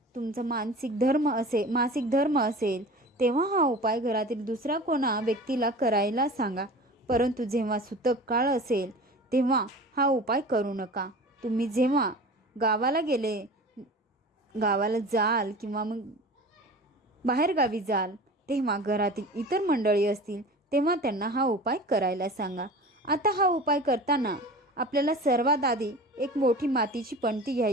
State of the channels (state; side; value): normal; both; correlation 0.37